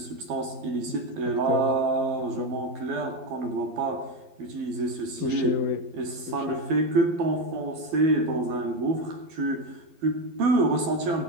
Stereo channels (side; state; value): left; late; 12 ms